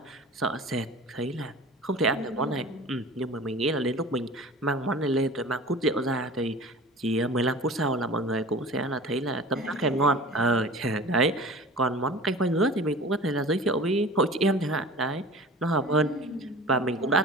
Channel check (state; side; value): normal; both; correlation 0.39